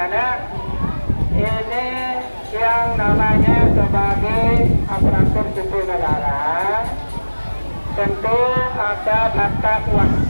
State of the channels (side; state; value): both; inverted; correlation -1.00